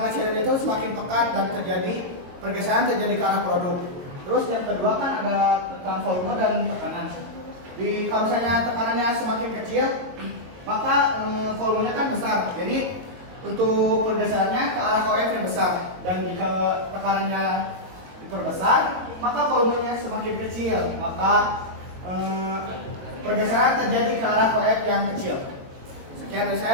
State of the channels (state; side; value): late; left; 22 ms